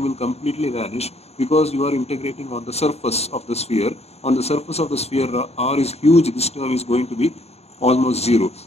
will completely vanish, because you are integrating on the surface of the sphere. On the surface of the sphere, R is huge, this term is going to be almost zero.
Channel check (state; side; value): late; right; 0.30 ms